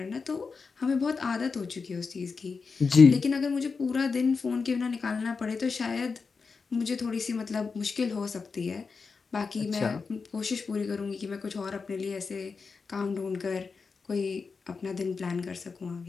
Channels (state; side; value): quieter; right; 4.9 dB